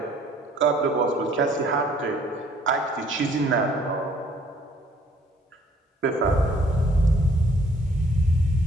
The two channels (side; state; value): both; normal; correlation 0.60